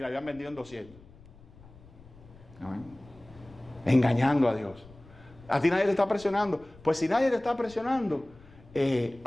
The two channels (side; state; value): left; noise; rumble, 23 dB below the sound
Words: habían vendido en 200. ¿Amén? Engañando a Dios. A ti nadie te está presionando. Pues si nadie te está presionando,